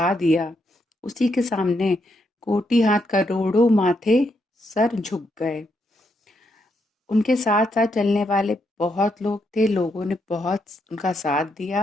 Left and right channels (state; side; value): normal; both; correlation 0.79